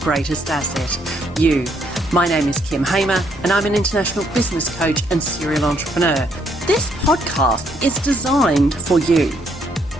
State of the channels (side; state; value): both; normal; correlation 0.71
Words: asset, you. My name is Kim Hamer and I'm an international business coach and serial entrepreneur. This podcast is designed for you